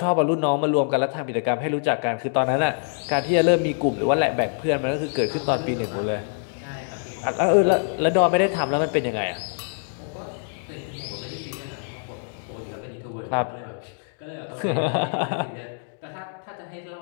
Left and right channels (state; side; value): silent; right; digital silence